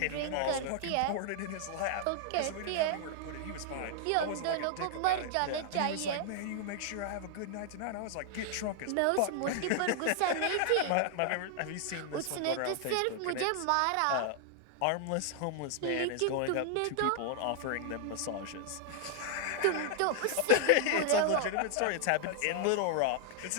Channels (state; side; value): different; both; correlation 0.00